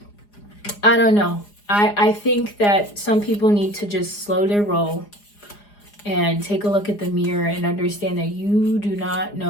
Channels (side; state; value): right; late; 4.9 ms